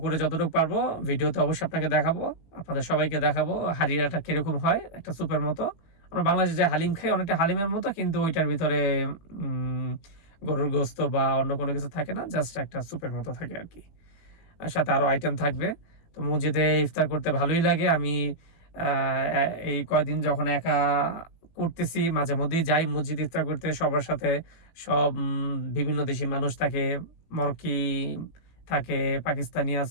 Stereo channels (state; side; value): late; right; 18 ms